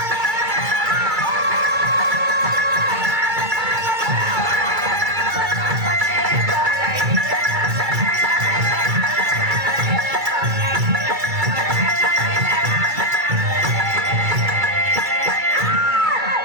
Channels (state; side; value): late; left; 2.3 ms